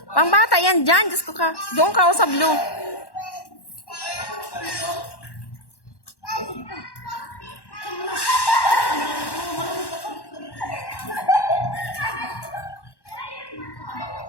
Pangbata yan dyan. Diyos ko ka. Doon ka o sa blue.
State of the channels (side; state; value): right; late; 1.1 ms